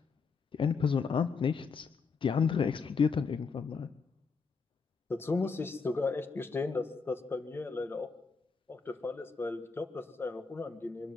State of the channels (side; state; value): right; quieter; 5.0 dB